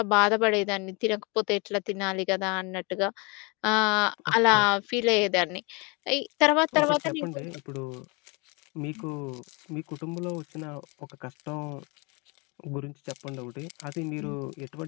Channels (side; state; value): right; quieter; 30.0 dB